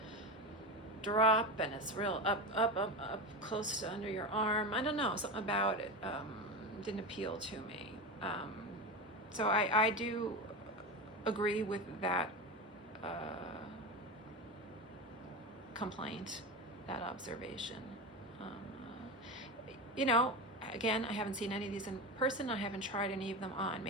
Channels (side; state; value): both; normal; correlation 0.21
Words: drop, and it's real up close to under your arm. I don't know, something about it didn't appeal to me. So I do agree with that complaint, that observation. You know, again, I haven't seen any of these in person. I haven't tried any of them on.